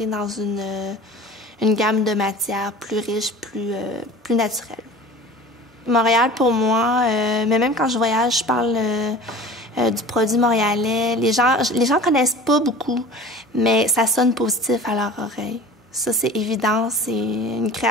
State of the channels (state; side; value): normal; both; correlation 0.41